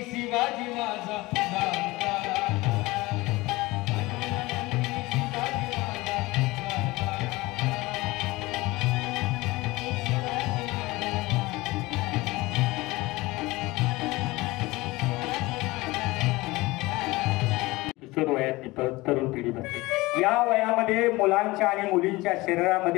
शिवाजी माझा जाणता. वयातली तरुण पिढी बनते. या वयामध्ये मुलांच्या आणि मुलींच्या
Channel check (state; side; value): quieter; right; 21.1 dB